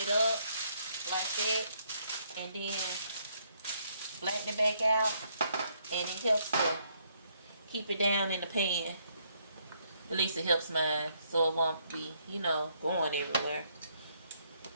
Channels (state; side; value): inverted; both; correlation -0.71